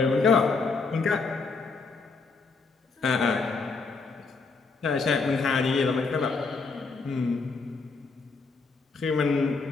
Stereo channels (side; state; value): right; quieter; 4.3 dB